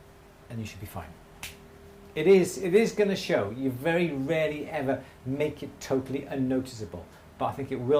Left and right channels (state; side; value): identical; both; correlation 1.00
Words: and you should be fine. It is going to show. You very rarely ever make it totally unnoticeable, but I think it